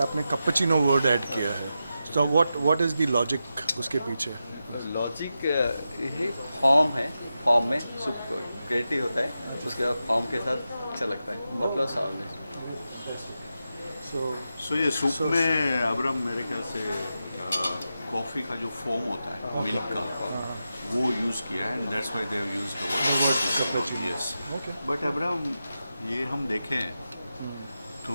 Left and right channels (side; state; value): both; inverted; correlation -0.90